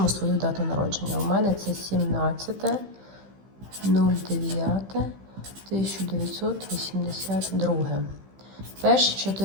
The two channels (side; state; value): left; late; 15 ms